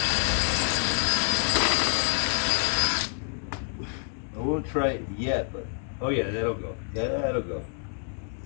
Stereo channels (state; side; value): silent; right; 60 dB below the other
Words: won't try it yet, but oh yeah, that'll go. That'll go.